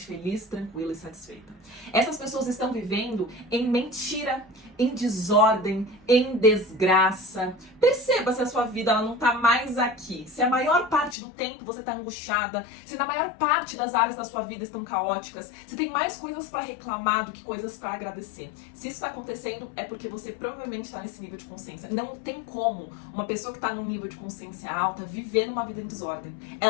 feliz, tranquila e satisfeita. Essas pessoas estão vivendo em mentira, em desordem, em desgraça. Perceba se a sua vida ela não tá mais aqui. Se a maior parte do tempo você tá angustiada, se na maior parte das áreas da sua vida estão caóticas, se tem mais coisas para reclamar do que coisas para agradecer. Se isso tá acontecendo, é porque você provavelmente tá nesse nível de consciência. Não tem como uma pessoa que tá num nível de consciência alta viver numa vida em desordem.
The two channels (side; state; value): right; drops out; at 11.2 s